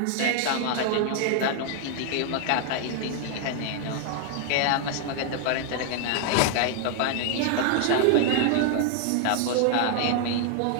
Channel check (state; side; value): different; both; correlation 0.00